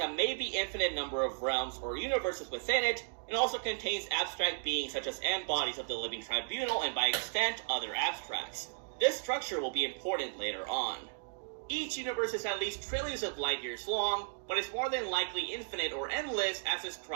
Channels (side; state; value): left; silent; digital silence